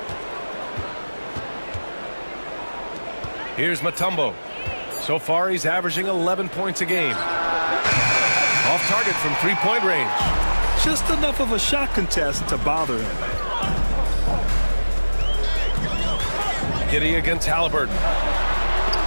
Here's Mutombo. So far, he's averaging 11 points a game. Off target from three-point range. Just enough of a shot contest to bother him. Giddey against Halliburton.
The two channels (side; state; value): both; inverted; correlation -1.00